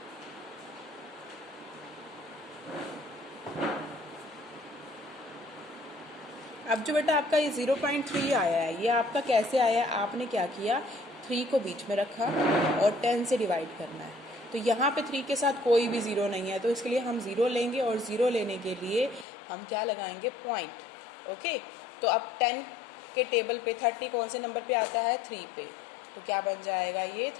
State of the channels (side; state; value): right; drops out; at 19.2 s